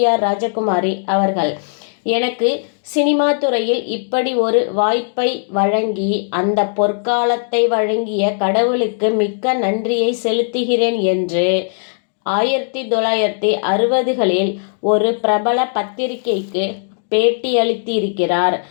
ராஜகுமாரி அவர்கள். எனக்கு சினிமா துறையில் இப்படி ஒரு வாய்ப்பை வழங்கி அந்த பொற்காலத்தை வழங்கிய கடவுளுக்கு மிக்க நன்றியை செலுத்துகிறேன் என்று 1960களில் ஒரு பிரபல பத்திரிகைக்கு பேட்டியளித்திருக்கிறார்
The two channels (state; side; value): silent; right; digital silence